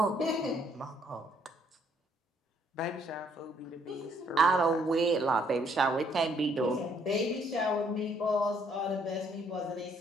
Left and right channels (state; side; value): normal; both; correlation 0.67